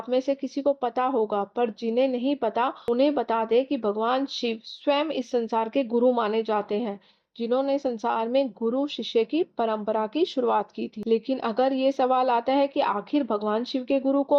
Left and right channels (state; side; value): identical; both; correlation 1.00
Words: में से किसी को पता होगा, पर जिन्हें नहीं पता उन्हें बता दें कि भगवान शिव स्वयं इस संसार के गुरु माने जाते हैं, जिन्होंने संसार में गुरु शिष्य की परंपरा की शुरुआत की थी। लेकिन अगर ये सवाल आता है कि आखिर भगवान शिव के गुरु